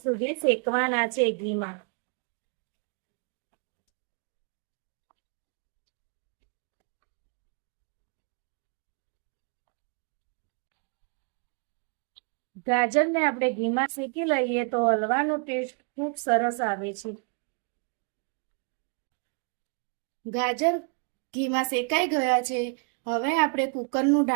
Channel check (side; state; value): left; quieter; 36.4 dB